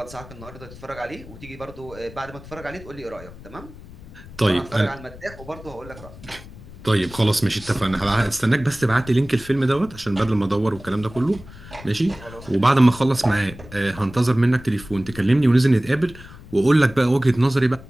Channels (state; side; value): noise; left; rumble, 17 dB below the sound